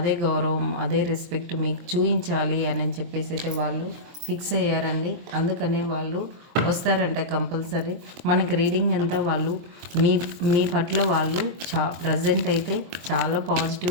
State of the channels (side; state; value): left; late; 23 ms